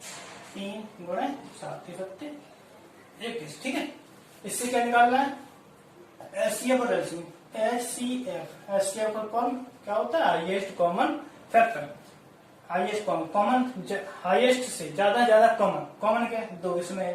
3 गुणे 7 7 21। ठीक है, इससे क्या निकालना है? एचसीएफ और एलसीएम। एचसीएफ का कॉमन क्या होता है? Highest common factor. Highest common highest से ज्यादा कॉमन। कॉमन क्या है? 2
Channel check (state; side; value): identical; both; correlation 1.00